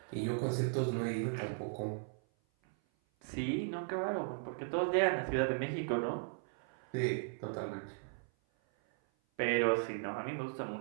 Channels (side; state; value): left; silent; 53 dB below the other